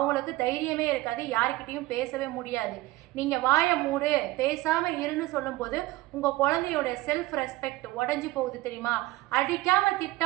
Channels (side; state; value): left; quieter; 18.6 dB